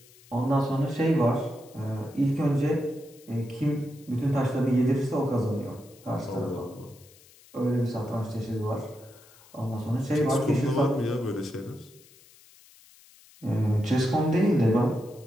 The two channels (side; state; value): left; noise; hiss, 25 dB below the sound